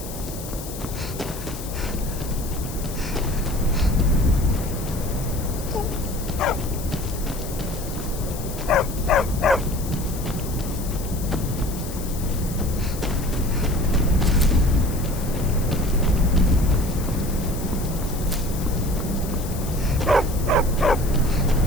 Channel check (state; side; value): noise; left; hiss, 12 dB below the sound